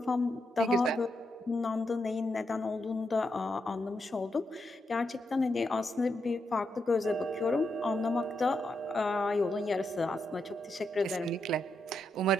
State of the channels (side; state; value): both; normal; correlation 0.83